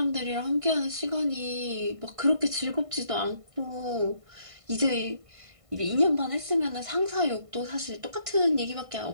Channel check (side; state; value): left; late; 1.5 ms